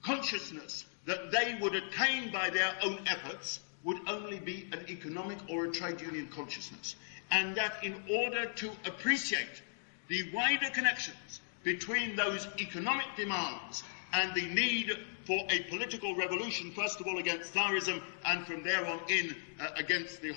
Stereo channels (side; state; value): right; silent; digital silence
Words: consciousness that they would attain by their own efforts would only be an economic or a trade union consciousness, and that in order to appreciate the wider connections between those economic demands and the need for a political revolution, first of all against Tsarism and from there on in against the